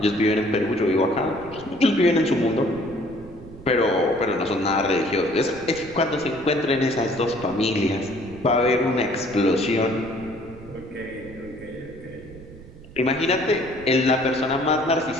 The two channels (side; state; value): right; noise; rumble, 18 dB below the sound